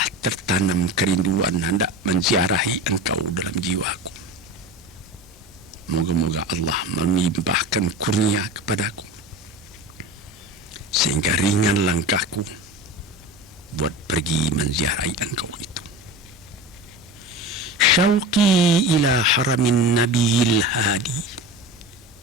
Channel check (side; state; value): both; normal; correlation 0.30